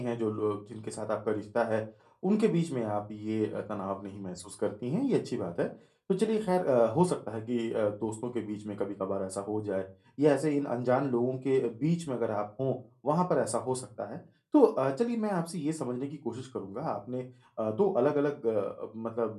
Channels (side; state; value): both; identical; correlation 1.00